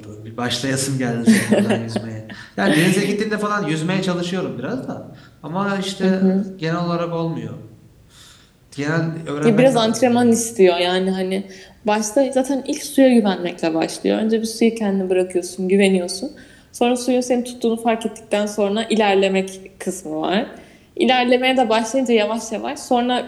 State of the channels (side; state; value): both; identical; correlation 1.00